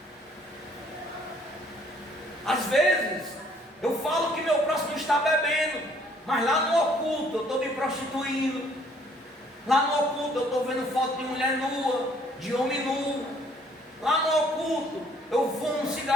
Às vezes eu falo que meu próximo está bebendo, mas lá no oculto eu estou me prostituindo. Lá no oculto eu estou vendo foto de mulher nua, de homem nu. Lá no oculto eu fumo um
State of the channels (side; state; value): both; normal; correlation 0.62